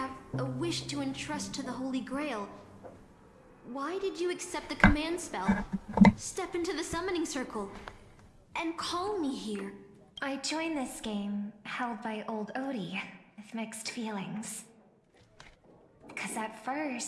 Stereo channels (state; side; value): identical; both; correlation 1.00